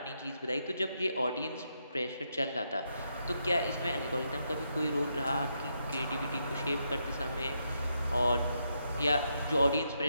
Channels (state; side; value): inverted; both; correlation -0.81